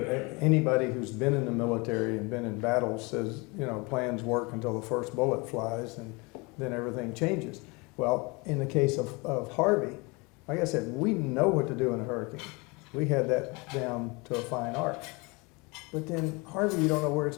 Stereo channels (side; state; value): right; quieter; 27.5 dB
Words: anybody who's been in the military and been in battles says, you know, plans work until the first bullet flies and then everything changes. Well, in the case of Harvey, like I said, we know what to do in a hurricane. We had that down to a fine art. But then Harvey, you don't know where it's